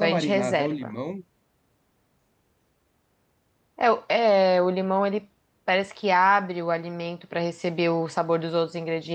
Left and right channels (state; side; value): identical; both; correlation 1.00